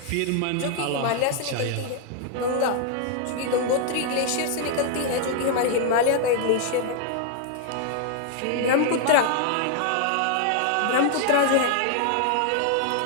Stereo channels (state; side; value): different; both; correlation 0.00